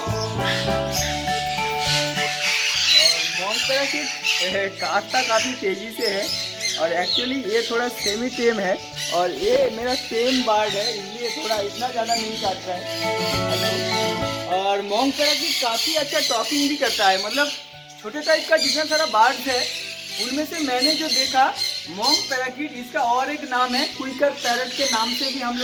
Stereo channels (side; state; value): both; identical; correlation 1.00